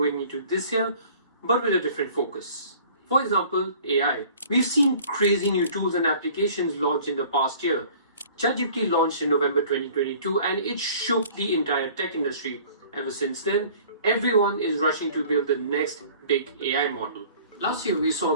into this year, but with a different focus. For example, AI. We've seen crazy new tools and applications launched in the past year. ChatGPT launched in November 2022 and it shook the entire tech industry. Ever since then, everyone is rushing to build the next big AI model. Last year, we saw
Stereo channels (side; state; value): both; inverted; correlation -0.50